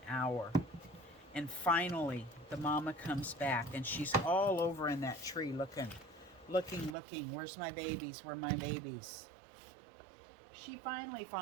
hour. And finally, the mama comes back, and she's all over in that tree looking. Where's my babies? Where are my babies? She finally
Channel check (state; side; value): drops out; left; at 7.0 s